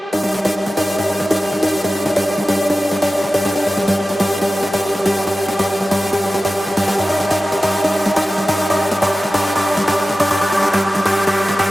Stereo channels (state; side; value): normal; both; correlation 0.95